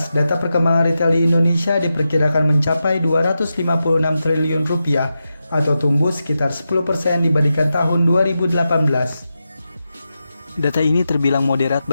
data perkembangan retail di Indonesia diperkirakan mencapai 256 triliun rupiah atau tumbuh sekitar 10% dibandingkan tahun 2018. Data ini terbilang moderat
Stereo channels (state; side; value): inverted; both; correlation -0.90